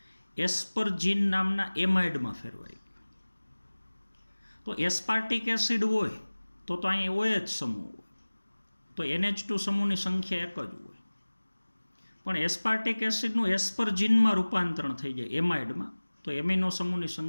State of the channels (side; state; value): both; inverted; correlation -1.00